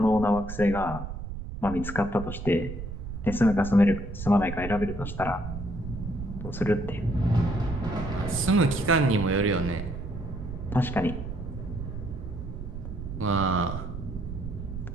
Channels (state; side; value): noise; right; rumble, 8 dB below the sound